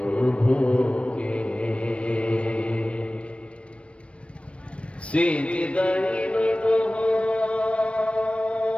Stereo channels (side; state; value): right; late; 0.061 ms